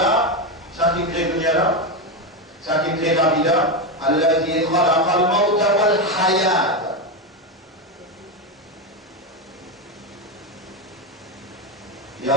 ça qui crée dunya là, ça qui crée la vie là, alladhi khalaqa al-mawta wal hayat. Ya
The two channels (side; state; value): both; normal; correlation 0.12